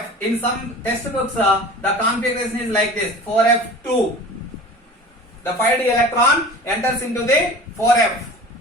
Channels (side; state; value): both; normal; correlation 0.39